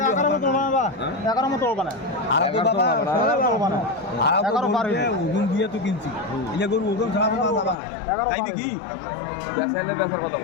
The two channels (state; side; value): drops out; right; at 7.8 s